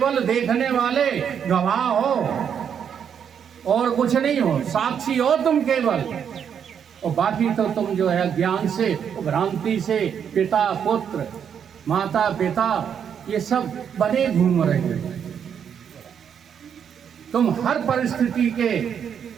देखने वाले गवाह हो और कुछ नहीं हो, साक्षी हो तुम केवल। और बाकी तो तुम जो है ज्ञान से, भ्रांति से पिता पुत्र, माता पिता, ये सब बने घूम रहे हो। तुम हर परिस्थिति के,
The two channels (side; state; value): left; quieter; 8.0 dB